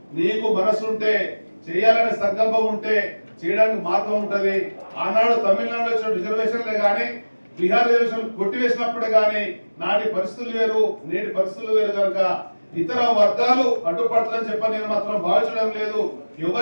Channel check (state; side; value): inverted; both; correlation -1.00